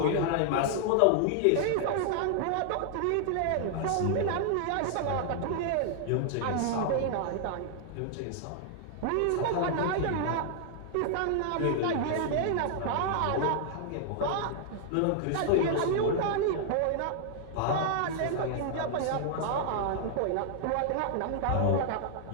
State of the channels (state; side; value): different; both; correlation 0.00